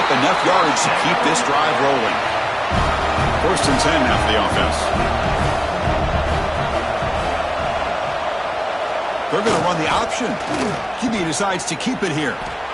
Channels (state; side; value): identical; both; correlation 1.00